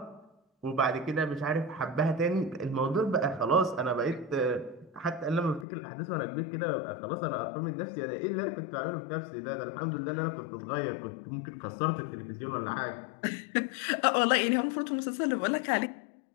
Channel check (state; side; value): drops out; right; at 5.7 s